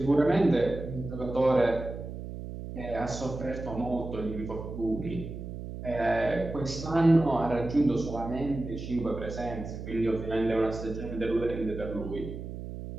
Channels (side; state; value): right; noise; hum, 9 dB below the sound